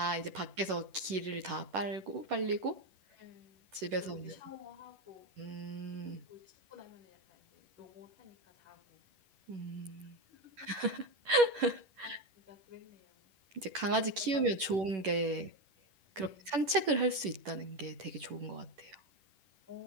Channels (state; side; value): late; left; 11 ms